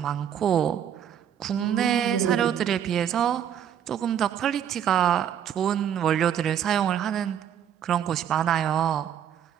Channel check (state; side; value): quieter; left; 9.4 dB